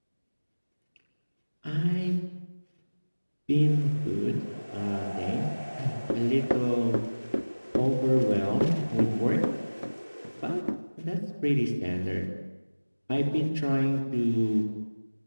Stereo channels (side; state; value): both; inverted; correlation -1.00